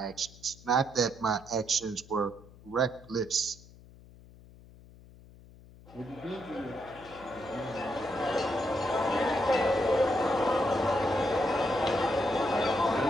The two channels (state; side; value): noise; left; hum, 22 dB below the sound